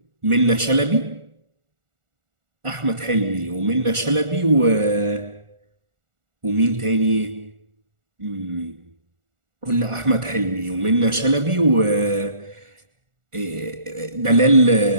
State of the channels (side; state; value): left; late; 1.4 ms